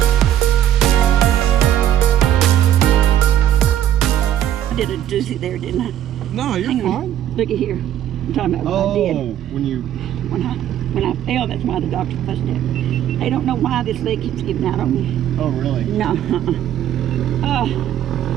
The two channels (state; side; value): quieter; left; 11.4 dB